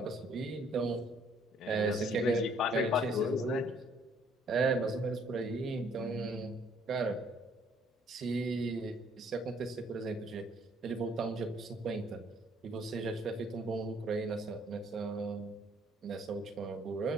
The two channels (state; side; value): normal; both; correlation 0.63